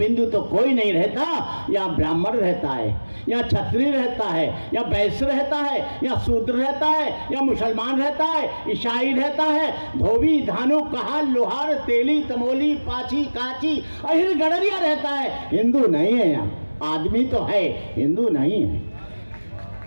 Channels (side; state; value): both; inverted; correlation -1.00